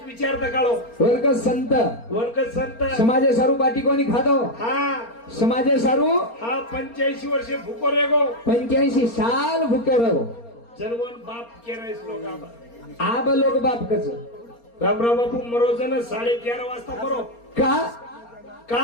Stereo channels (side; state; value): right; late; 4.3 ms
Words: विचार दा काळो वर्ग संत वर्ग संत समाजे सारू बाटी कोणी खातो हा समाजे सारू हा 85 वर्षे भूको रेगो 85 साल भूके रहो जनवन बाप केरायस लोक आबा आब लोक बाप कच रामराव बापू मरोजन 11:30 वाजता मरो का का